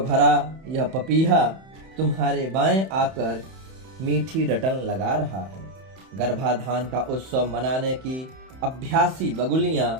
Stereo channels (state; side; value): late; left; 31 ms